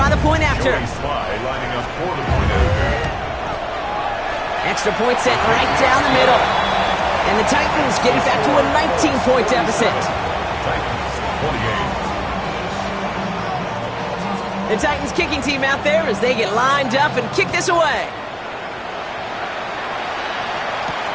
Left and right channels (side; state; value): both; identical; correlation 1.00